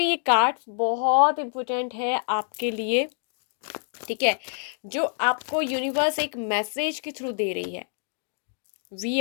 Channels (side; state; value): right; silent; 61 dB below the other